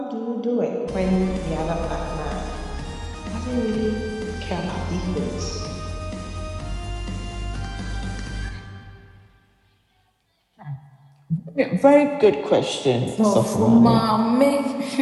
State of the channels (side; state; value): both; identical; correlation 1.00